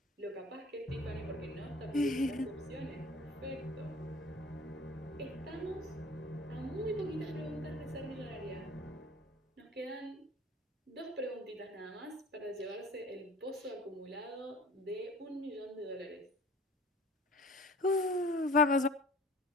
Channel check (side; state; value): both; normal; correlation 0.45